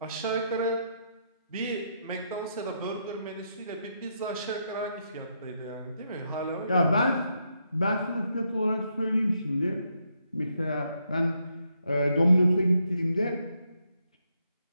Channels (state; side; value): inverted; both; correlation -0.78